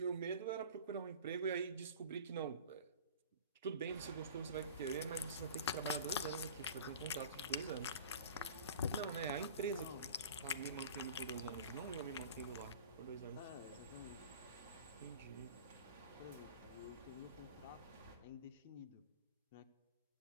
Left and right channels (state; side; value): inverted; both; correlation -0.40